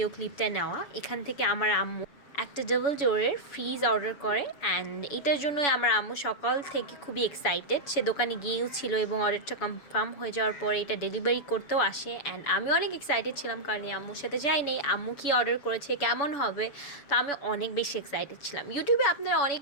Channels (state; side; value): late; right; 7.0 ms